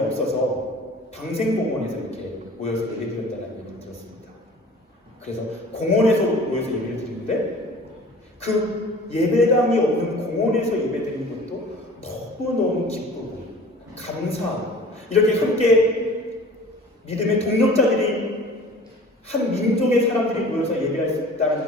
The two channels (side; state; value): both; normal; correlation 0.45